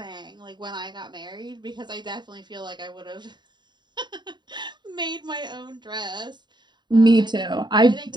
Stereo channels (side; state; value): left; late; 0.21 ms